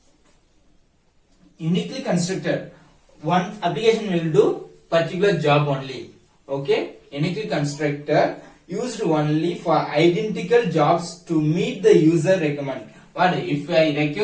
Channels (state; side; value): identical; both; correlation 1.00